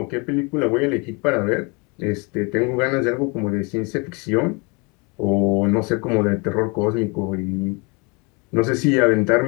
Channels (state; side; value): quieter; right; 30.1 dB